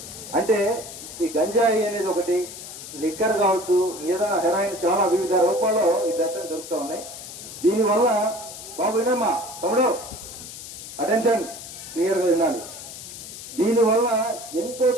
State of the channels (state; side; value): noise; left; hiss, 12 dB below the sound